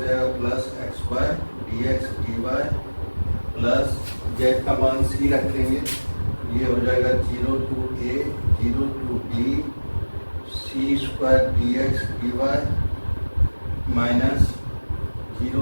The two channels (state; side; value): inverted; both; correlation -1.00